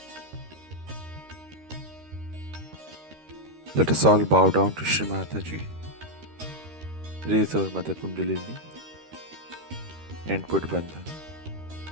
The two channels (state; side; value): late; left; 13 ms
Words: Let us all bow down to Shri Mataji, raise our Mother Kundalini, and put Bandhan.